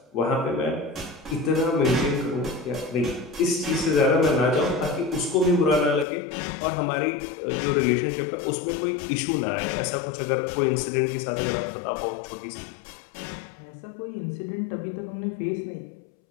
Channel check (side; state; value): right; drops out; at 6.1 s